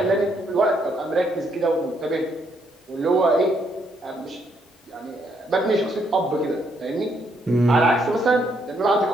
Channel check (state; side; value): normal; both; correlation 0.73